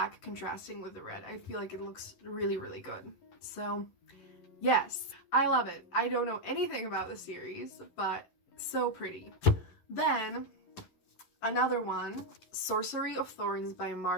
contrasting with the red. I feel like it looks really, really good. So yes, I love it. I don't know anything about the series, but so pretty. Then another one, Sorcery of Thorns by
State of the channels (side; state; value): right; late; 11 ms